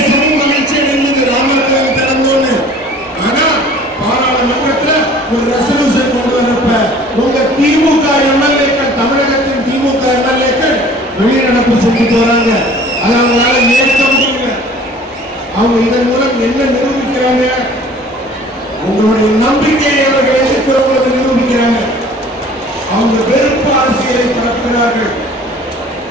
மகிழ்ச்சி அடைந்தது ராமர் கோயில் திறந்தோன்னு. ஆனா பாராளுமன்றத்துல ஒரு ரெசல்யூஷன் கொண்டு வரப்ப உங்க திமுக எம்எல்ஏக்கள், தமிழகத்தின் திமுக எம்எல்ஏக்கள் வெளிநடப்பு செஞ்சுட்டு வராங்க. அதை அவங்களால ஏற்க முடியல. அவங்க இதன் மூலம் என்ன நிரூபிக்கிறாங்க? உங்களுடைய நம்பிக்கையை அவர்கள் எதிர்க்கிறவங்களுக்கு நிரூபிக்கிறாங்க. அவங்க வெறுப்பு அரசியலை பரப்புகிறார்கள்.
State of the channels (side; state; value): both; normal; correlation 0.49